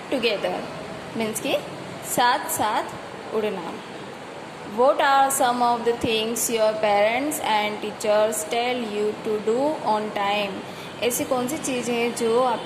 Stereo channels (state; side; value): identical; both; correlation 1.00